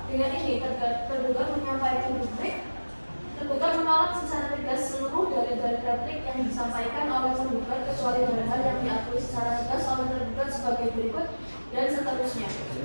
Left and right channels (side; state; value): both; inverted; correlation -1.00